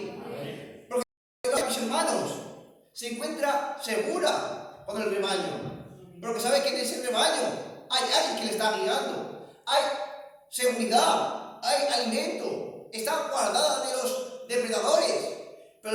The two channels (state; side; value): identical; both; correlation 1.00